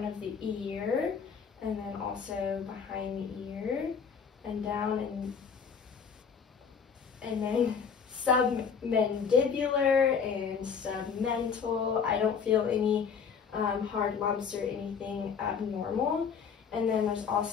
of the ear, and then also behind the ear, and down, and then submandibular and submental. I don't feel any hard lumps or anything abnormal. And then there's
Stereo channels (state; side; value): quieter; right; 6.4 dB